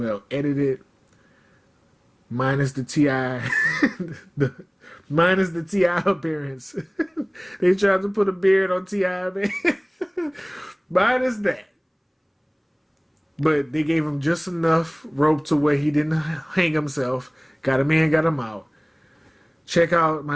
edited. minus the Ti, the minus the Ti appearance. They tried to put a beard on Ti, man. Minus that. But they gave him just enough rope to where he didn't hang himself. Got him in, got him out. Check out My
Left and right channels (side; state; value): both; identical; correlation 1.00